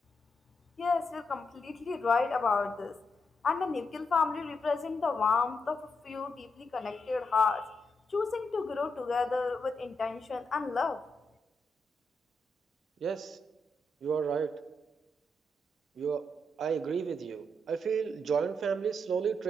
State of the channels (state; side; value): normal; both; correlation 0.82